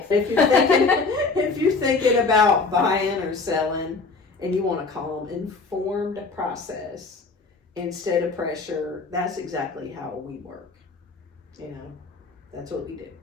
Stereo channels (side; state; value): right; quieter; 4.1 dB